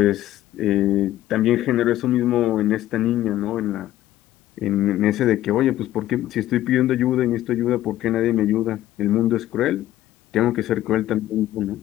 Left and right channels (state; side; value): quieter; right; 13.9 dB